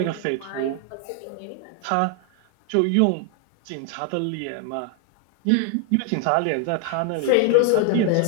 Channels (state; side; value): different; both; correlation 0.00